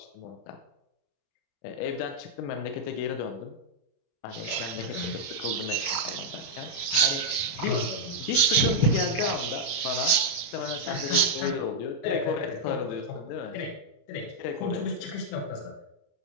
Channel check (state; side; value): late; right; 34 ms